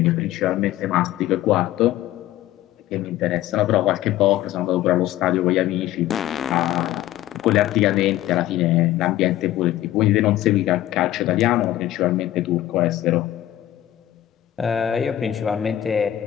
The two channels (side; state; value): right; quieter; 13.6 dB